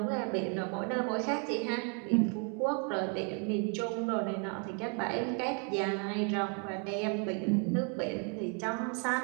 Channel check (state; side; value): quieter; left; 37.8 dB